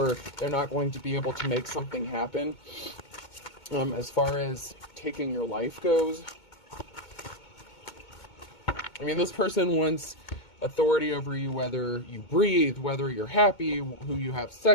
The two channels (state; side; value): late; right; 2.2 ms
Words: they're not going to be able to make something happen. As far as taking your life goes, I mean, this person wants authority over you, whether you breathe, whether you're happy, who you have